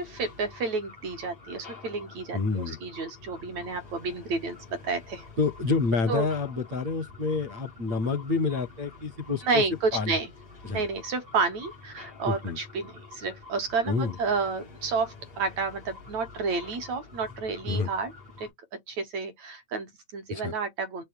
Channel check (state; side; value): late; left; 8.8 ms